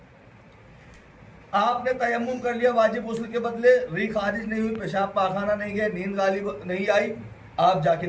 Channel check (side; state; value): both; identical; correlation 1.00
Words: آپ نے تیمم کر لیا واجب غسل کے بدلے، ریح خارج نہیں ہوئی، پیشاب پاخانہ نہیں گئے، نیند غالب نہیں آئی، آپ جا کے